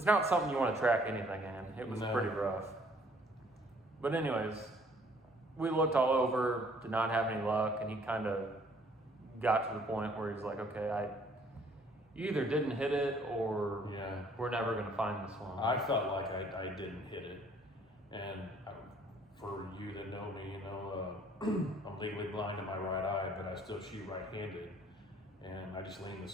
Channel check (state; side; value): normal; both; correlation 0.60